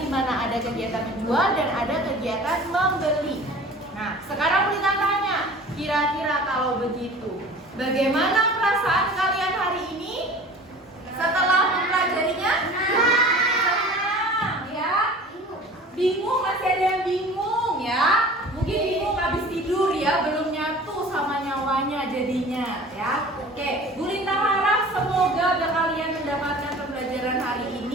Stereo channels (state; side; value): normal; both; correlation 0.42